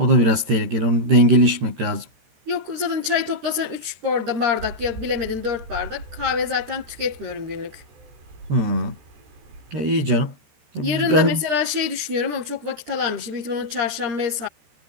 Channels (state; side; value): late; left; 13 ms